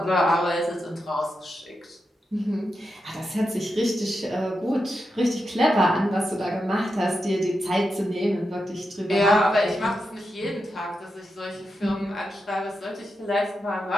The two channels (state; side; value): normal; both; correlation 0.87